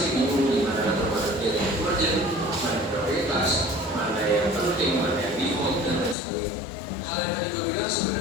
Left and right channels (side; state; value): right; drops out; at 6.2 s